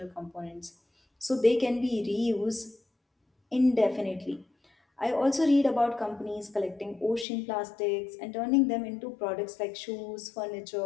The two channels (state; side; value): drops out; right; at 7.2 s